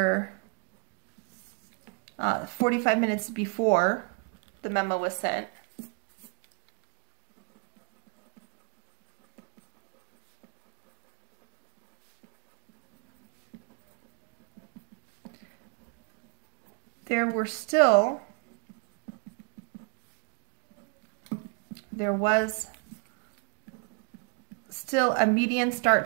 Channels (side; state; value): left; quieter; 36.5 dB